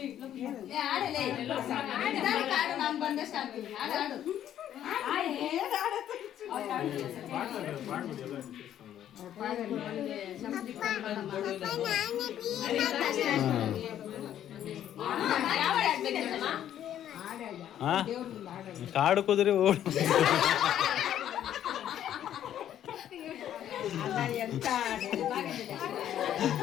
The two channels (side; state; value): right; quieter; 10.9 dB